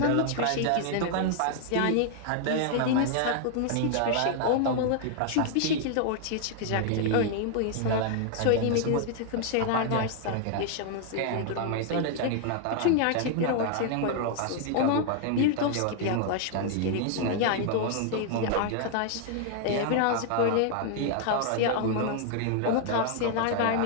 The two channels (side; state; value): both; different; correlation 0.00